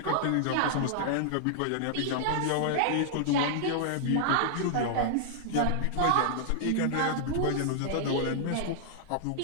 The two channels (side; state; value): both; different; correlation -0.01